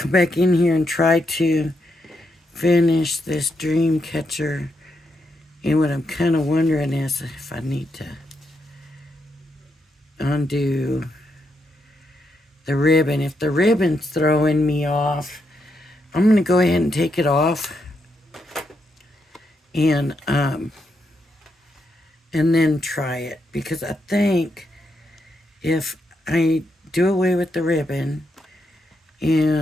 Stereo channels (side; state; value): both; normal; correlation 0.82